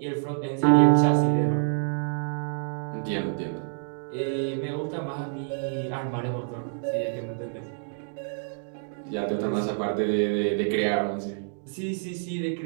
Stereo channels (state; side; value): silent; left; digital silence